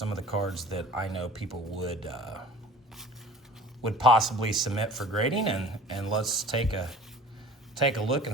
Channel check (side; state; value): both; normal; correlation 0.45